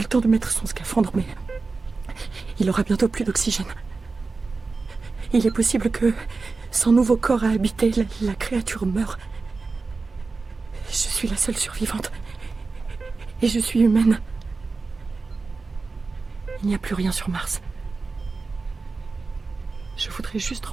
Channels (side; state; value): left; quieter; 4.1 dB